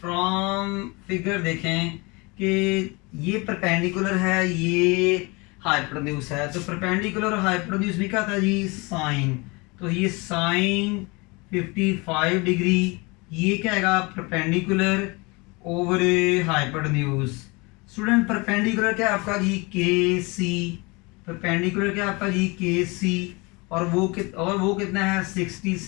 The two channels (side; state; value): right; quieter; 26.9 dB